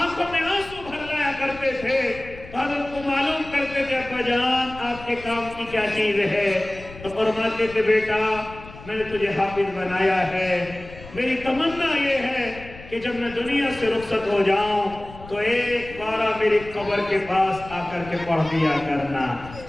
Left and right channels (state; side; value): noise; left; rumble, 16 dB below the sound